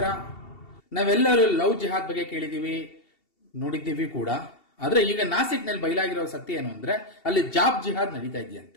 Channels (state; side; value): late; right; 2.7 ms